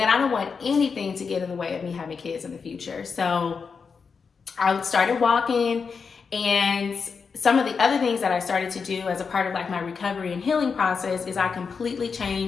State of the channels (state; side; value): quieter; right; 5.5 dB